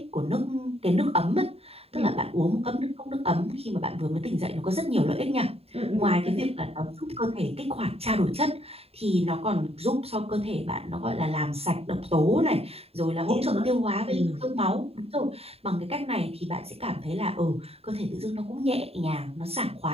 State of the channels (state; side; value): late; left; 0.29 ms